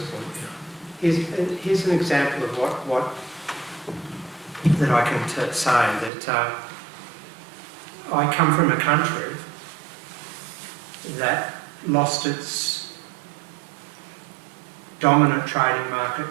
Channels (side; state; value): left; drops out; at 6.1 s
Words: point. Here's an example of what that I can say, that I come from a country that lost its dominant trading